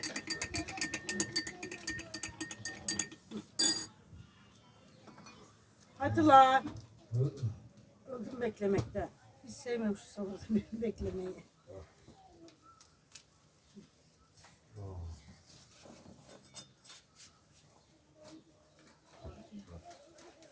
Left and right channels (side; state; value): both; identical; correlation 1.00